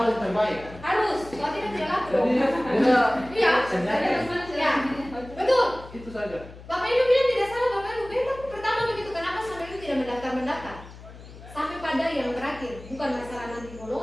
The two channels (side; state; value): left; noise; hum, 17 dB below the sound